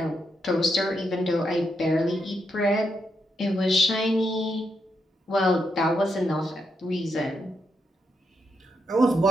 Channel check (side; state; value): both; normal; correlation 0.81